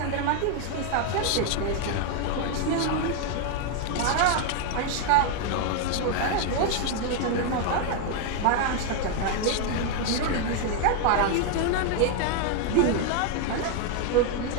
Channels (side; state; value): both; different; correlation 0.01